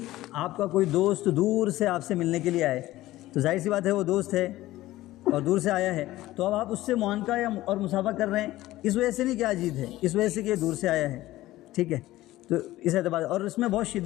آپ کا کوئی دوست دور سے آپ سے ملنے کے لیے آئے، تو ظاہر سی بات ہے وہ دوست ہے اور دور سے آیا ہے، تو اب آپ اس سے معانقہ یا اور مصافحہ کر رہے ہیں، اس وجہ سے نہیں کہ آج عید ہے، اس وجہ سے کہ یہ دور سے آیا ہے، ٹھیک ہے۔ تو اس اعتبار اور اس میں بہت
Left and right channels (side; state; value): right; quieter; 16.4 dB